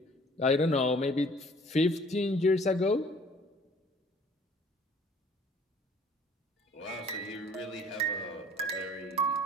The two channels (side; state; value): both; normal; correlation 0.54